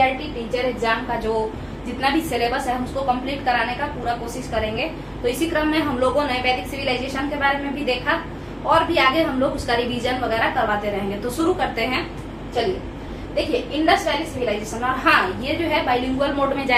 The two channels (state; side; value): identical; both; correlation 1.00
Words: टीचर एग्जाम का जो जितना भी सिलेबस है हम उसको कंप्लीट कराने का पूरा कोशिश करेंगे। तो इसी क्रम में हम लोगों ने वैदिक सिविलाइजेशन के बारे में भी देखा और भी आगे हम लोग उसका रिवीजन वगैरह करवाते रहेंगे। तो शुरू करते हैं। चलिए देखिए, इंडस वैली सिविलाइजेशन। और हाँ, ये जो है बाइलिंगुअल मोड में